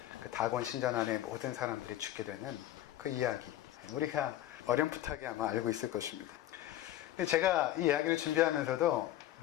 그 다곤 신전 안에 모든 사람들이 죽게 되는 그 이야기, 우리가 어렴풋하게 아마 알고 있을 것입니다. 근데 제가 이 이야기를 준비하면서도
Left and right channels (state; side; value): quieter; right; 13.3 dB